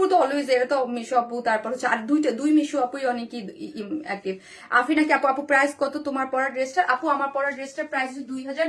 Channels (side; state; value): both; identical; correlation 1.00